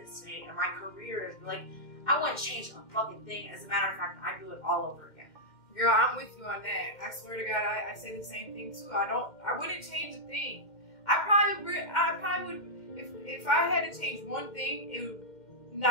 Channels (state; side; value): late; right; 2.1 ms